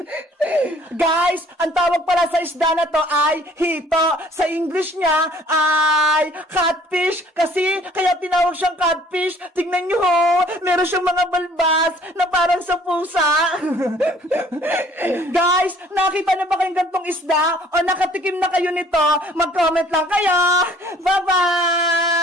Guys, ang tawag pala sa isda na to ay hito. Sa English niya ay catfish. Kasi kaya tinawag siyang catfish. Tignan nyo ho! Meron siyang mga balbas na parang sa pusa. Guys, nakita na ba kayong gantong isda? O nakatikim na kayo nito? Mag-comment lang kayo.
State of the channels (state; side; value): normal; both; correlation 0.56